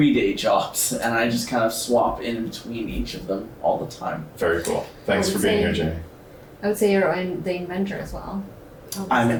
day jobs and I just kind of swap in between each of them all the time. Very cool. Thanks for being here, Jamie. I would say you're the inventor as well. I'm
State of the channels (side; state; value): both; identical; correlation 1.00